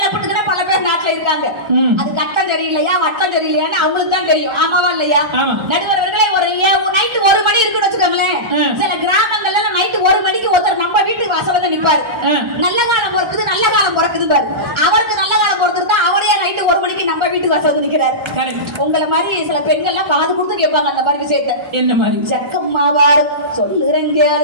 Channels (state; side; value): late; left; 1.3 ms